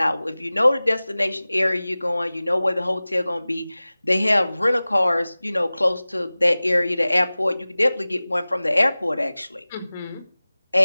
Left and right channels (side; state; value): both; inverted; correlation -0.98